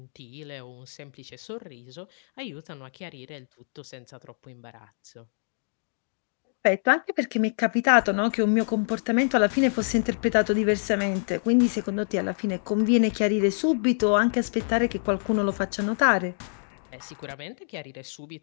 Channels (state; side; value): silent; right; digital silence